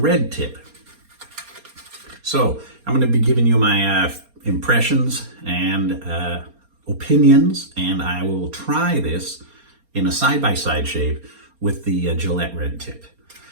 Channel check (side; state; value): left; late; 4.3 ms